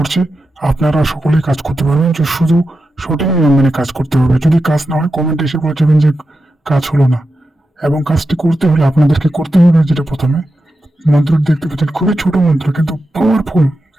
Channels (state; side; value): normal; both; correlation 0.90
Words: আপনারা সকলেই কাজ করতে পারবেন, যে শুধু সঠিক নিয়ম মেনে কাজ করতে হবে। যদি কাজ না হয় কমেন্টে এসে বলে যাবেন যে কাজ হলো না। এবং কাজটি করতে হলে আপনাদেরকে করতে হবে যেটা প্রথমে মন্ত্রটি দেখতে পাচ্ছেন, খুবই ছোট মন্ত্র কিন্তু পাওয়ারফুল।